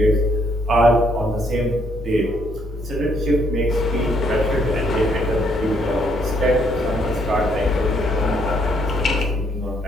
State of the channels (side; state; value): both; normal; correlation 0.70